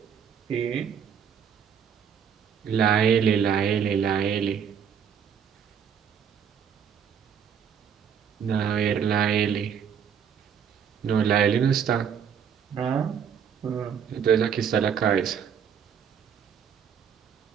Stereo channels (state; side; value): quieter; left; 7.7 dB